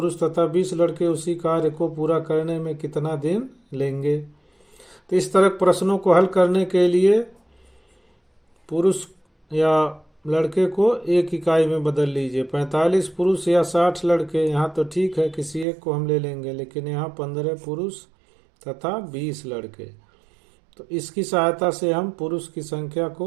तथा 20 लड़के उसी कार्य को पूरा करने में कितना दिन लेंगे। तो इस तरह प्रश्नों को हल करने के लिए पुरुष या लड़के को एक इकाई में बदल लीजिए। 45 पुरुष या 60 लड़के, यहाँ तो ठीक है किसी एक को हम ले लेंगे, लेकिन यहाँ 15 पुरुष तथा 20 लड़के। तो इसकी सहायता से हम पुरुष की संख्या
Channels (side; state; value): left; drops out; at 15.7 s